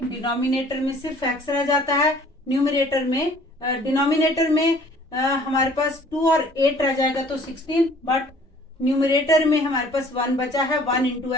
डिनोमिनेटर में सिर्फ x रह जाता है, न्यूमरेटर में डिनोमिनेटर में हमारे पास 2 और 8 रह जाएगा तो 16, बट न्यूमरेटर में हमारे पास 1 बचा है, 1 इंटू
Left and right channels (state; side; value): normal; both; correlation 0.54